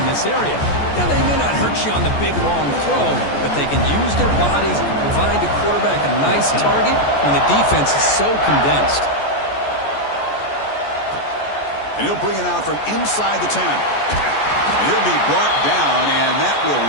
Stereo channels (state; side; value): late; right; 14 ms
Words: in this area. Now, they may not hurt you on the big, long throw, but they can use their bodies to provide the quarterback a nice target when the defense is so condensed. And he'll bring it out from inside the 10. And he'll be brought down, and that will